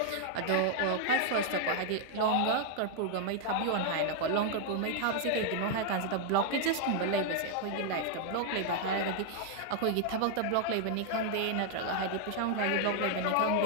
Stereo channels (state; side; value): different; both; correlation 0.00